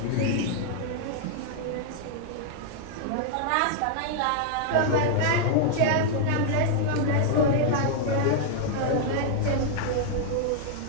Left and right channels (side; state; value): both; different; correlation -0.01